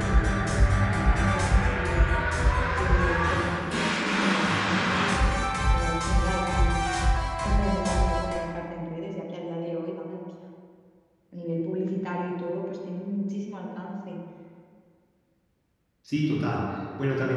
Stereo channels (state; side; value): identical; both; correlation 1.00